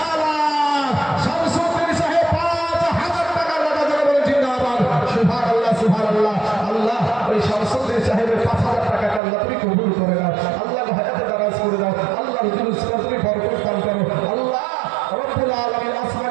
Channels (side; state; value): left; drops out; at 9.2 s